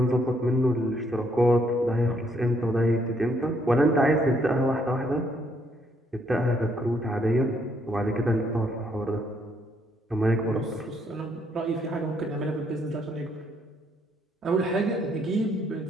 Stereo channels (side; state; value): both; normal; correlation 0.71